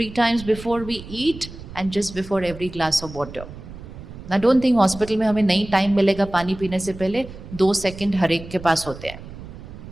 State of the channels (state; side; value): noise; right; rumble, 14 dB below the sound